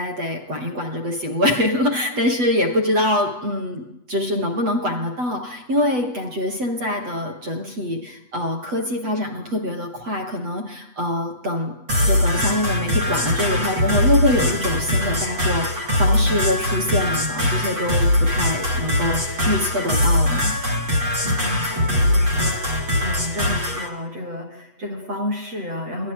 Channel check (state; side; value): late; left; 8.1 ms